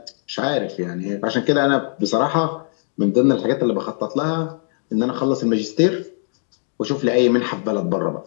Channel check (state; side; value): silent; right; digital silence